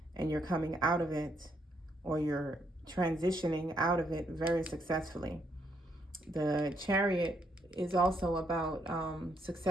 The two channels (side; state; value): both; normal; correlation 0.74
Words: and you're coming out of it, or you're transitioning out of it very successfully. The Chariot is also about